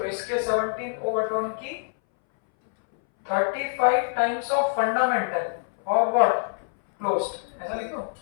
इसके 17 ओवरटोन की 35 टाइम्स ऑफ फंडामेंटल और व्हाट क्लोज्ड, ऐसा लिखो।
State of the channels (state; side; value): silent; right; 60 dB below the other